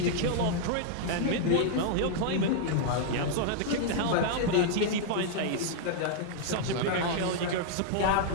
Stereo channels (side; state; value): both; different; correlation 0.00